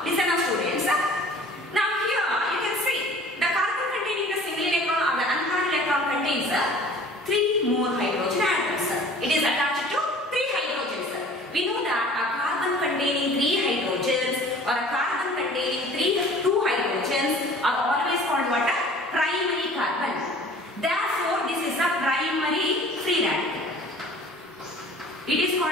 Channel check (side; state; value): both; normal; correlation 0.48